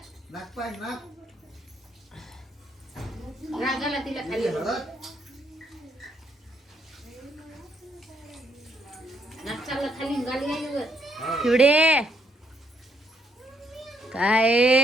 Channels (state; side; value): normal; both; correlation 0.72